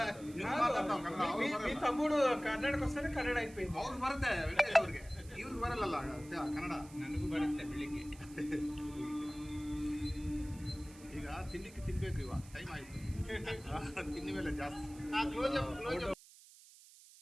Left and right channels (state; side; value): noise; right; hiss, 21 dB below the sound